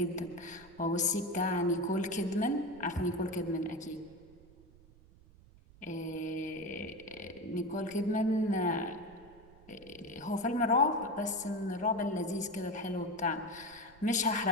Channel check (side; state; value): right; noise; rumble, 24 dB below the sound